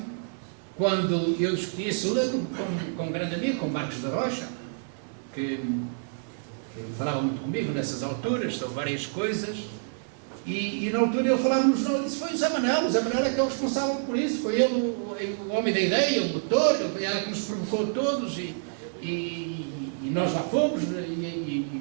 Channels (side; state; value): left; silent; digital silence